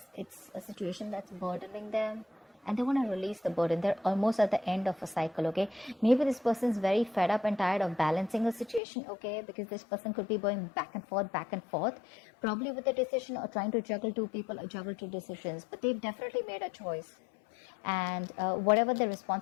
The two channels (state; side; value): drops out; right; at 8.8 s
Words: It's a situation that's burdening them, and they want to release the burden. They're almost at the end of a cycle, okay? Maybe this person's very fed up and tired of balancing a situation, okay? Because this person could be going back and forth, probably with a decision or trying to juggle two people or juggle two decisions. But they've definitely made a choice. And whatever their